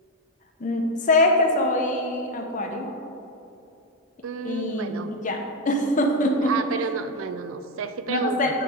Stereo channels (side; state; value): both; normal; correlation 0.07